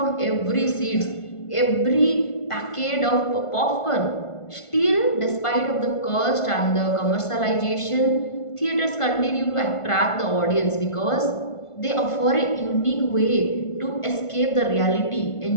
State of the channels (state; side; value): late; right; 1.5 ms